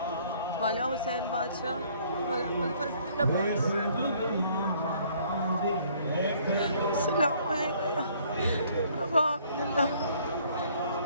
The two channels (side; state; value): both; inverted; correlation -0.61